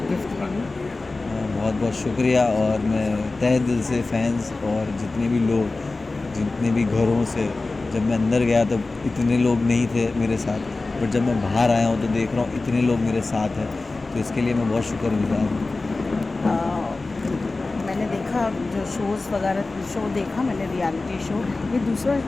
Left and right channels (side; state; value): right; quieter; 3.4 dB